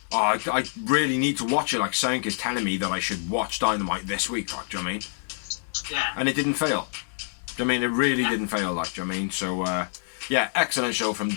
oh, I really need to watch it. Like, Sank is telling me that I should watch Dynamite this week. Like, do you know what I mean? Yeah. And it didn't fail. Do you know what I mean? It really didn't fail. Like, do you know what I mean? So, yeah, excellent show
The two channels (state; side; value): silent; right; digital silence